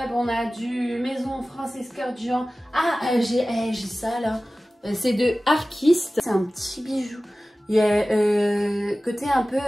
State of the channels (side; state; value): both; normal; correlation 0.97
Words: on a du Maison Francis Kurkdjian. Ah, j'ai ça là. C'est de Arquiste. C'est un petit bijou. Il y a côté un